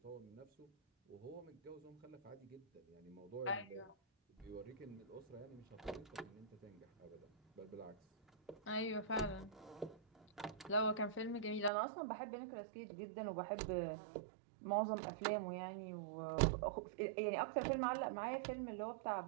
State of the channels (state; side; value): drops out; left; at 11.7 s